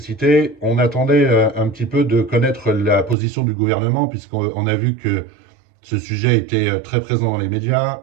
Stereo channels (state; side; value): drops out; left; at 3.2 s